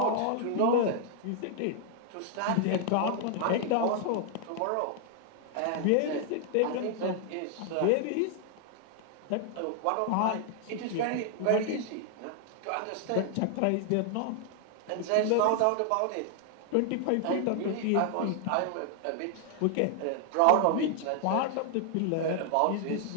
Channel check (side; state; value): both; different; correlation 0.00